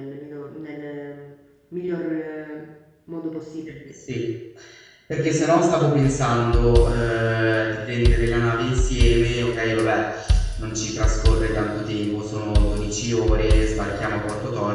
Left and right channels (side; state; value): both; identical; correlation 1.00